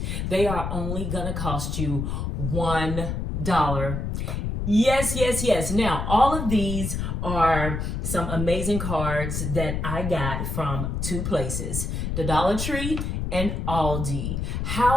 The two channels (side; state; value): left; noise; rumble, 3 dB below the sound